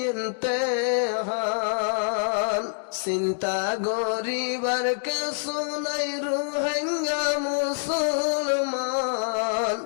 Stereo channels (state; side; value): silent; right; digital silence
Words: হান চিন্তা গরিবার কে শুনাই রোহিঙ্গা মুসলমান